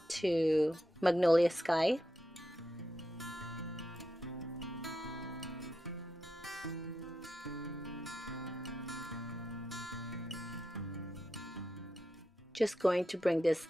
to Magnolia Sky. Just going to bring this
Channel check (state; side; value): normal; both; correlation 0.86